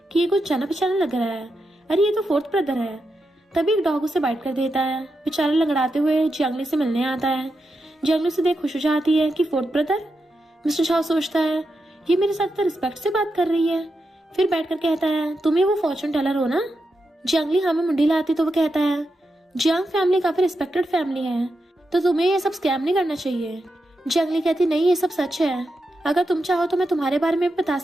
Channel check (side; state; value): both; normal; correlation 0.87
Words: कि ये कुछ जाना पहचाना लग रहा है, अरे ये तो 4th ब्रदर है। तभी एक डॉग उसे बाइट कर देता है। बेचारा लंगड़ाते हुए जंगली से मिलने आता है। जंगली से देख खुश हो जाती है कि 4th ब्रदर। मिस्टर शाओ सोचता है ये मेरे साथ तो रिस्पेक्ट से बात कर रही है। फिर बैठकर कहता है तुम ही वो फॉर्चून टेलर हो ना। जंगली हाँ में मुंडी लाती तो वो कहता है जियांग फैमिली काफी रिस्पेक्टेड फैमिली है, तो तुम्हें ये सब स्कैम नहीं करना चाहिए। जंगली कहती नहीं ये सब सच है, अगर तुम चाहो तो मैं तुम्हारे बारे में बता